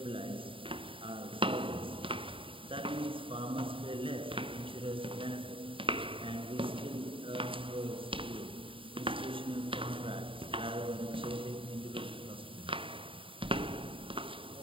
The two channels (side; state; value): left; late; 0.25 ms